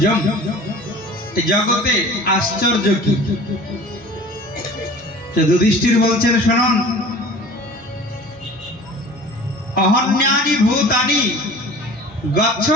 জগতে আশ্চর্য কি? যুধিষ্ঠির বলছেন, শুনুন, অহন্যানি ভূতানি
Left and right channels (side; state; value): both; normal; correlation 0.43